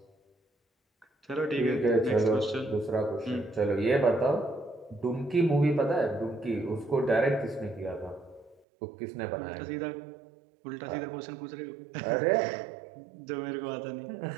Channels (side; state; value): left; drops out; at 8.6 s